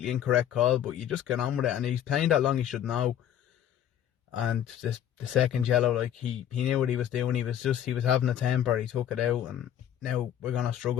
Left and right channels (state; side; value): quieter; right; 10.4 dB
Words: incorrect call, but you just get on with it, and he's playing that long, he should know. And the second yellow, he knew what he was doing. He was having a temper, he took it out, and now we're going to